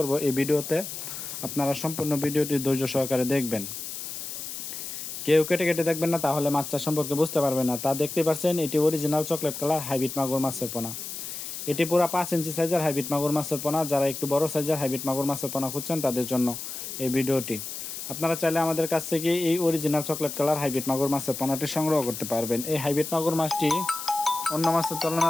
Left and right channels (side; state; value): left; noise; hiss, 8 dB below the sound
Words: এই ভিডিওতে। আপনারা সম্পূর্ণ ভিডিওটি ধৈর্য সহকারে দেখবেন। কেউ কেটে কেটে দেখবেন না, তাহলে মাছ চাষ সম্পর্কে বুঝতে পারবেন না। তা দেখতে পাচ্ছেন, এটি অরিজিনাল চকলেট কালার হাইব্রিড মাগুর মাছের পোনা। এটি পুরো 5 ইঞ্চি সাইজের হাইব্রিড মাগুর মাছের পোনা। যারা একটু বড় সাইজের হাইব্রিড মাগুর মাছের পোনা খুঁজছেন তাদের জন্য এই ভিডিওটি। আপনারা চাইলে আমাদের কাছ থেকে এই অরিজিনাল চকলেট কালার হাইব্রিড মাগুর মাছের পোনাটি সংগ্রহ করতে পারবেন। এই হাইব্রিড মাগুর মাছটি অন্য মাছের